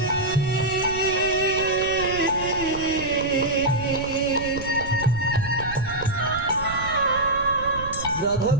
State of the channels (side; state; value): right; noise; rumble, 12 dB below the sound